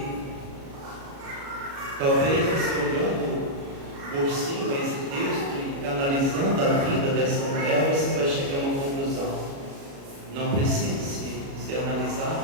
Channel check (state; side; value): late; left; 36 ms